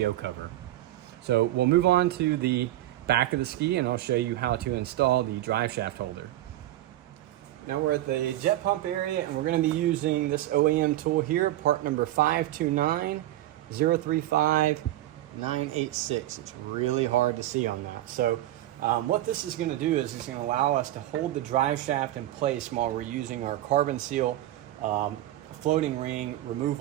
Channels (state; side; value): quieter; left; 14.6 dB